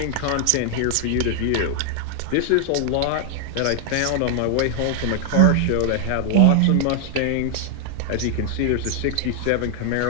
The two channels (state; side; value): different; both; correlation 0.00